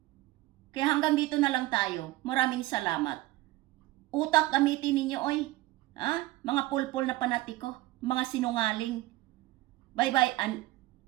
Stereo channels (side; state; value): left; quieter; 17.7 dB